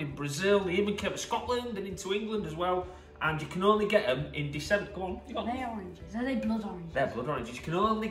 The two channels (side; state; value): both; identical; correlation 1.00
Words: in Brazil. They even came to Scotland and into England as well. And you can only get them in December. Go on. Are they oranges? Are they blood oranges? They're blood oranges. You can only